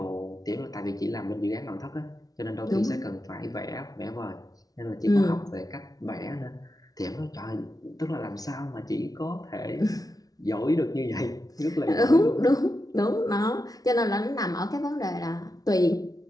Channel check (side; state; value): right; late; 0.18 ms